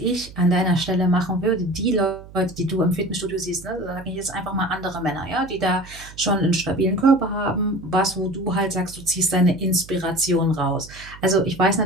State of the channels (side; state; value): right; noise; hum, 18 dB below the sound